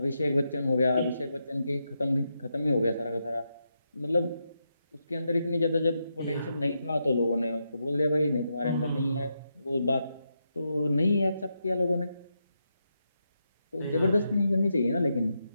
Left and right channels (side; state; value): both; inverted; correlation -0.84